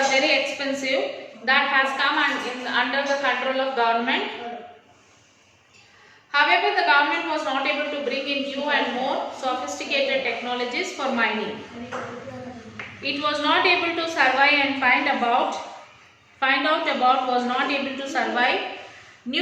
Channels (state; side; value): identical; both; correlation 1.00